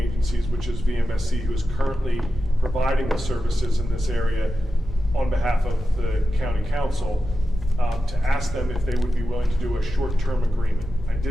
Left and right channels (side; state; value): both; normal; correlation 0.91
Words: which is VMSC, who is currently providing the services in this area on behalf of the county council, to ask them if they would be willing to do a short-term agreement. I